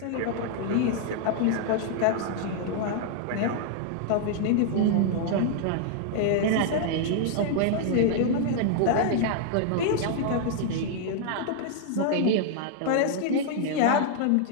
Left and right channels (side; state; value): both; different; correlation -0.01